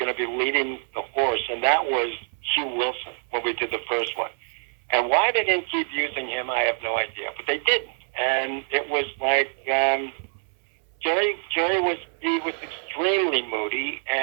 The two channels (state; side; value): silent; left; 60 dB below the other